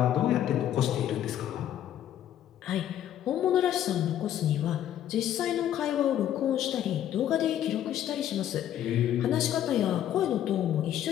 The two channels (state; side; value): quieter; right; 11.2 dB